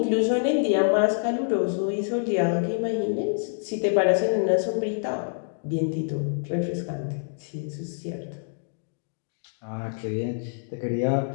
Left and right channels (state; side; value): silent; right; digital silence